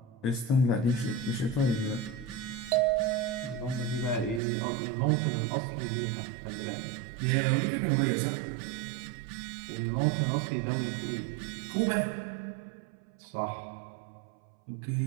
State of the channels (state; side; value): drops out; left; at 4.4 s